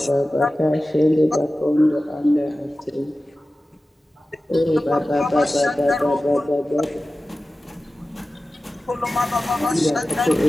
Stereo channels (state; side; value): normal; both; correlation 0.95